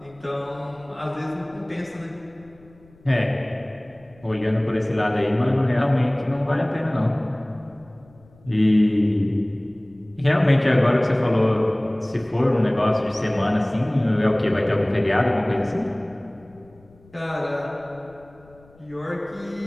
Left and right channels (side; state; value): left; noise; rumble, 27 dB below the sound